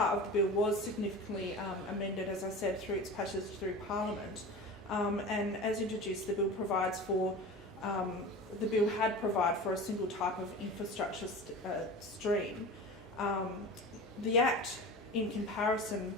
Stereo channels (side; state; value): both; normal; correlation 0.33